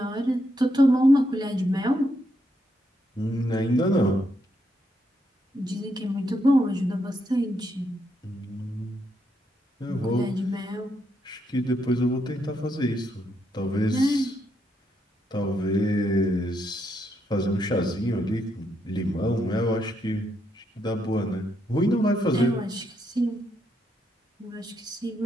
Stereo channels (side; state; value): both; normal; correlation 0.78